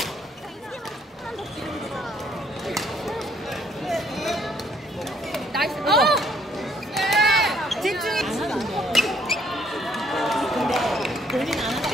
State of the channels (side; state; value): both; normal; correlation 0.65